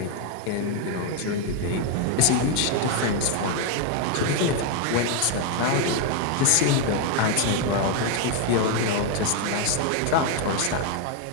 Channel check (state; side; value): different; both; correlation 0.01